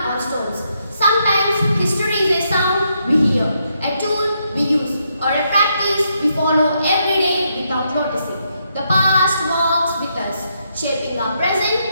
on stones. Sometimes history is a sound we hear, a tool we use, or a practice we follow every day without noticing. The past walks with us, shaping our present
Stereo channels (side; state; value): both; inverted; correlation -0.78